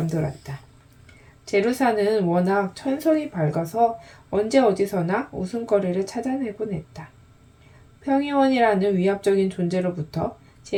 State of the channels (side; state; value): both; identical; correlation 1.00